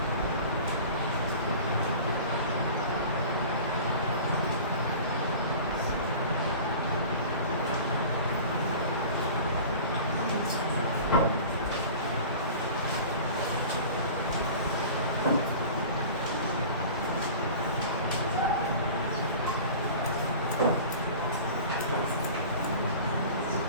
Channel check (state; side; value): inverted; both; correlation -0.39